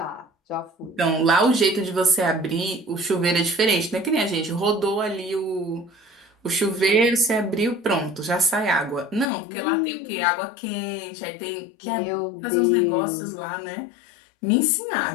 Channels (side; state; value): right; drops out; at 9.3 s